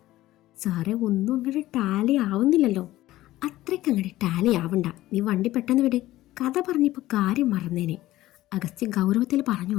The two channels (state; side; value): quieter; right; 15.9 dB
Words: സാറേ ഒന്നും അങ്ങോട്ട് ടാലി ആവുന്നില്ലല്ലോ. അത്രയ്ക്ക് അങ്ങോട്ട് ടാലി ആവണ്ട. നീ വണ്ടി പെട്ടെന്ന് വിട്. കഥ പറഞ്ഞപ്പോൾ കാര്യം മറന്നേനെ. അഗസ്ത്യ ഗൗരവത്തിൽ